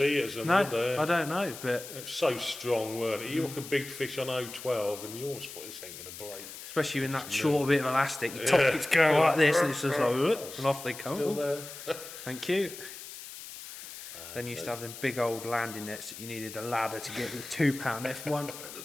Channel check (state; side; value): noise; left; hiss, 12 dB below the sound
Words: it as a I don't know, but it's so strong, weren't it? You hook a big fish on 012 and you almost thought this ain't going to break. Especially in that short bit of elastic, your top it's going like this, and it's just like, and off they come. Still there. Thank you. Then you used to have them big old landing nets that you needed a ladder to get the £2